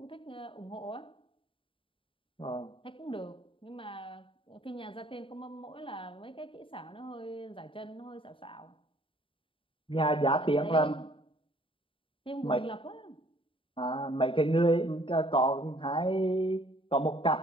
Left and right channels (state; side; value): late; right; 0.25 ms